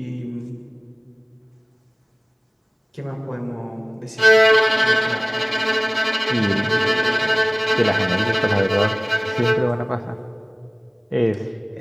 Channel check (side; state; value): both; identical; correlation 1.00